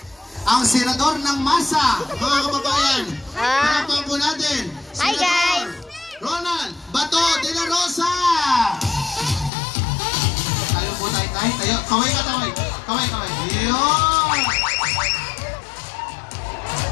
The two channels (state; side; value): drops out; right; at 9.5 s